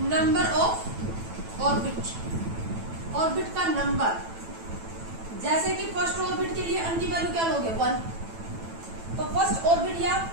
नंबर ऑफ ऑर्बिट, ऑर्बिट का नंबर। जैसे कि फर्स्ट ऑर्बिट के लिए अन की वैल्यू क्या लोगे? 1। तो फर्स्ट ऑर्बिट या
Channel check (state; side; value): late; left; 9.0 ms